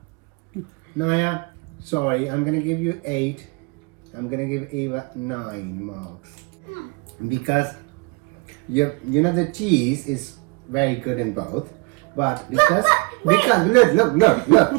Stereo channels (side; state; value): left; quieter; 30.8 dB